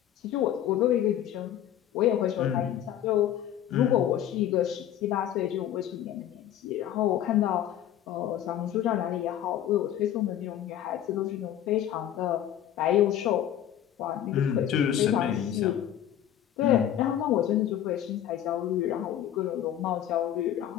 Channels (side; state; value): right; quieter; 11.1 dB